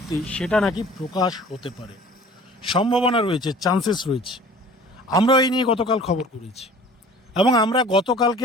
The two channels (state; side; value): normal; both; correlation 0.46